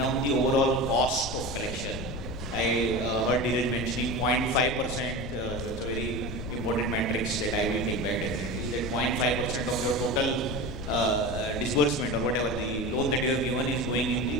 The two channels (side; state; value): left; noise; rumble, 8 dB below the sound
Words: the overall cost of collection? I heard Dheeraj mentioning 0.5%. That's a very important matrix that I will take that definitely. That 0.5% of your total disbursement or whatever the loan that you have given is going